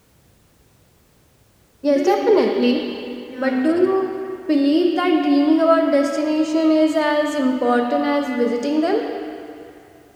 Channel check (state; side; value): identical; both; correlation 1.00